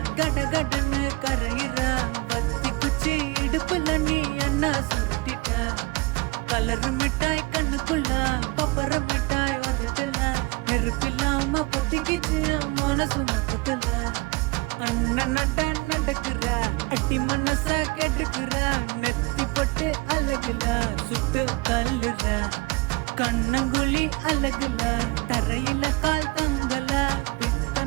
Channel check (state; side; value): quieter; left; 25.4 dB